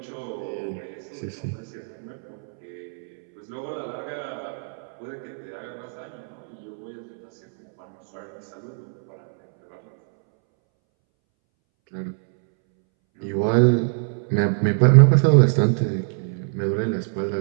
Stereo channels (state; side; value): silent; left; 62 dB below the other